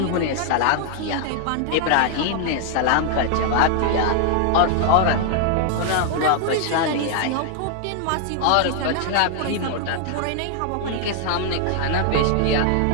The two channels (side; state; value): both; different; correlation 0.00